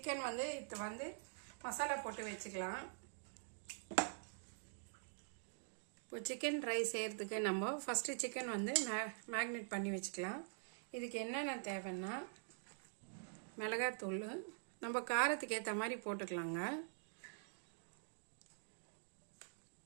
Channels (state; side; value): silent; left; digital silence